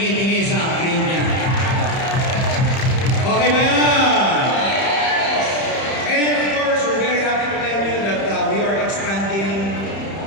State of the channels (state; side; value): late; right; 30 ms